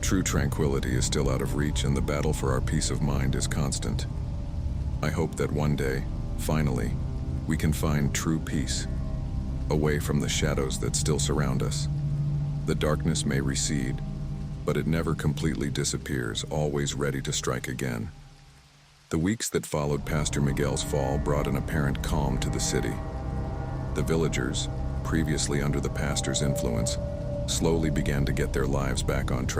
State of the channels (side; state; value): both; identical; correlation 1.00